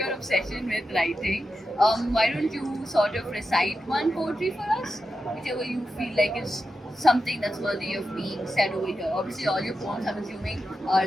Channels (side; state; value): both; normal; correlation 0.90